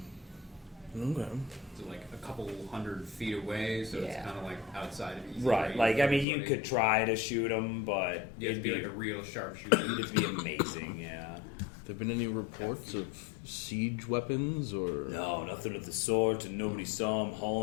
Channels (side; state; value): right; drops out; at 6.2 s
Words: Okay. So like a couple 100 feet away, so it's Yeah. kind of like outside of easy Right. range Like, I for mean, you everybody. could try to shoot him, but You have to it'd be like a real sharpshooter. it'd be amazing. Yeah. There been any reports of siege weapons or? No, nothing of the sort, and nobody saw him